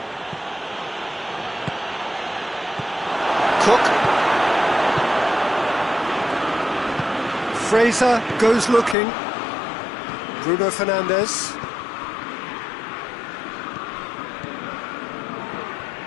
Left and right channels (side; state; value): right; drops out; at 9.0 s